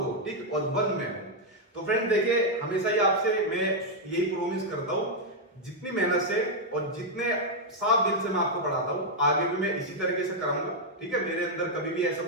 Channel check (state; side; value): normal; both; correlation -0.01